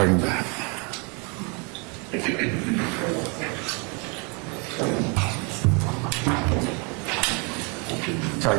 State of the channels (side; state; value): left; quieter; 30.9 dB